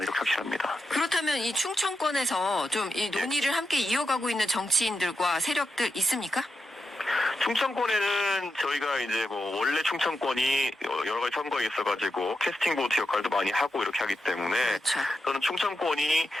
확신합니다. 그렇다면 이 충청권에서 좀 이 논의를 함께 이어가고 있는 정치인들과 세력들 있습니까? 충청권에는 저희가 이제 원래 충청권이 여러 가지 선거에 있어가지고 캐스팅 보트 역할도 많이 하고 이렇게 하기 때문에 그렇죠. 저는 충청권이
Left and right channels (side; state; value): both; normal; correlation 0.87